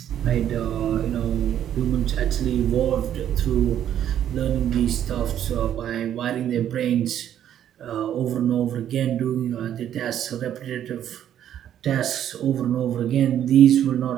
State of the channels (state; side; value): quieter; left; 10.5 dB